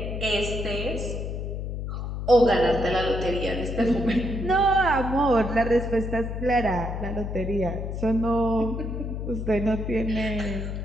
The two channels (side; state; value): left; noise; hum, 4 dB below the sound